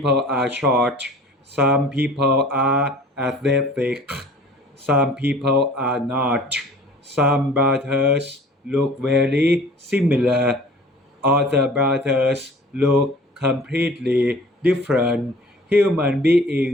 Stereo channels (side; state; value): both; normal; correlation 0.47